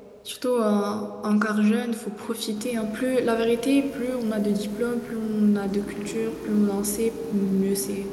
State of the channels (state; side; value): identical; both; correlation 1.00